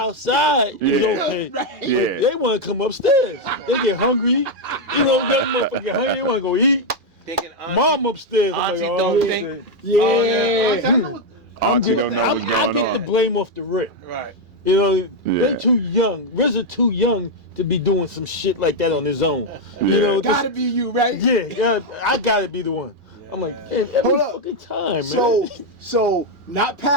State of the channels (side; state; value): left; late; 2.4 ms